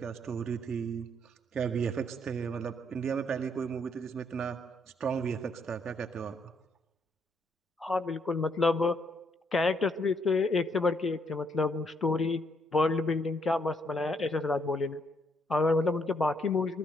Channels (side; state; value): both; normal; correlation 0.72